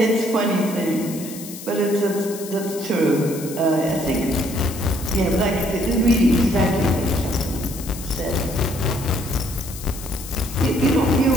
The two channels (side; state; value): left; noise; hiss, 13 dB below the sound